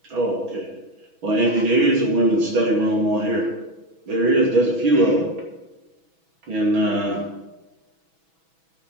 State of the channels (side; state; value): left; late; 6.1 ms